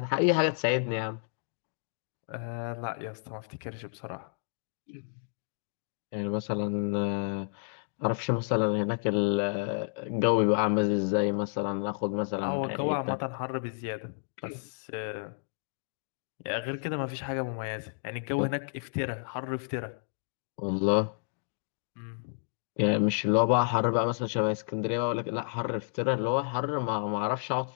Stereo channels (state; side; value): silent; right; digital silence